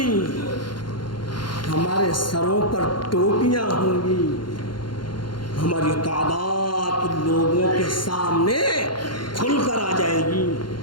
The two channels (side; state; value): right; late; 0.72 ms